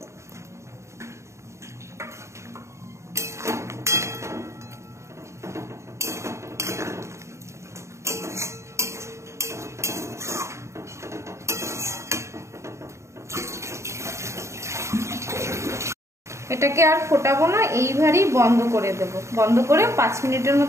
এটাকে আর ফোটাবো না, এইভাবেই বন্ধ করে দেব। বন্ধ করে 5 মিনিটের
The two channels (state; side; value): late; left; 0.14 ms